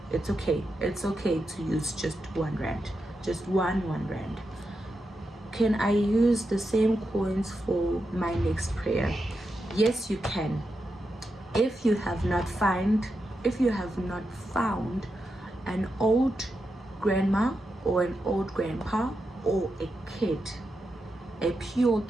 It's okay. It's okay to use just 1 rand, just one rand. Can I use the same coins for my next prayer? Yes, you can. If you have not found an old grandma or an old grandpa or a kid, a pure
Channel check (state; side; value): normal; both; correlation 0.87